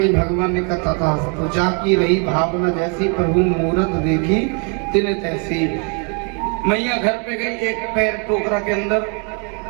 भगवान ने कहा था, तो जाकी रही भावना जैसी, प्रभु मूरत देखी तिन तैसी। मैया घर पे गई, एक पैर टोकरा के अंदर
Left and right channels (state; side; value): quieter; left; 36.8 dB